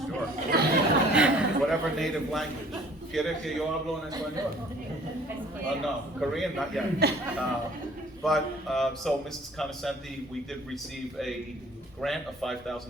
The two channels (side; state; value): both; normal; correlation 0.53